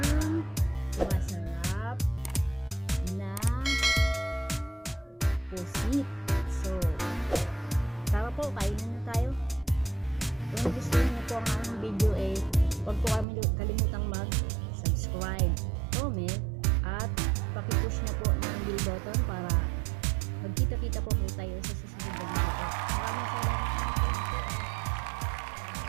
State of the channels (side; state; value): left; drops out; at 13.2 s